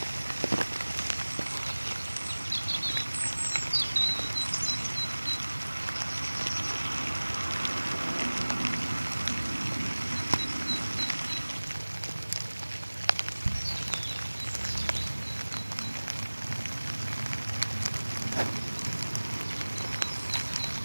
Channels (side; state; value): both; inverted; correlation -1.00